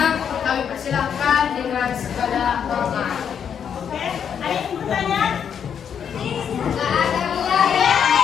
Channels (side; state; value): right; quieter; 7.9 dB